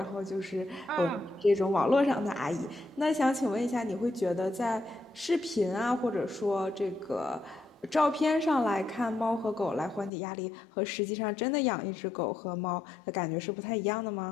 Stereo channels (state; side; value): drops out; right; at 10.1 s